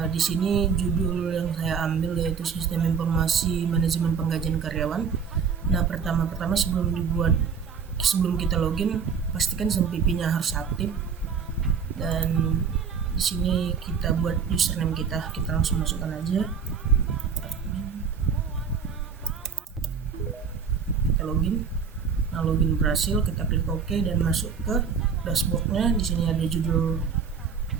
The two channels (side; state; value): left; quieter; 6.2 dB